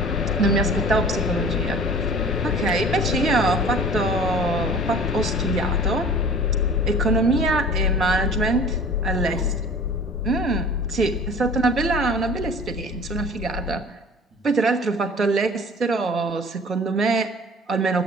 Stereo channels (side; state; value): both; normal; correlation 0.44